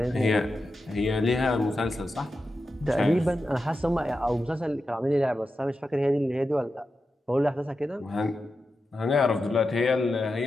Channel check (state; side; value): normal; both; correlation 0.90